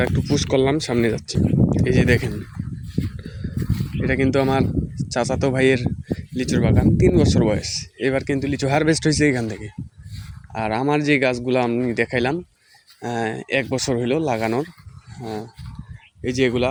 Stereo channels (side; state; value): both; identical; correlation 1.00